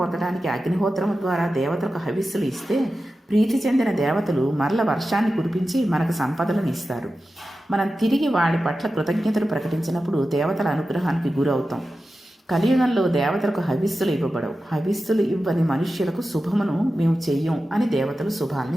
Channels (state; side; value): normal; both; correlation 0.93